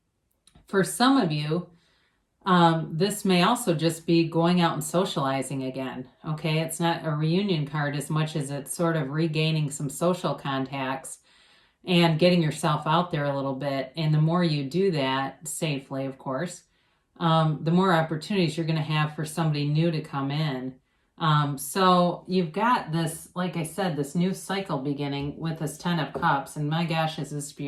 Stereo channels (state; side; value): identical; both; correlation 1.00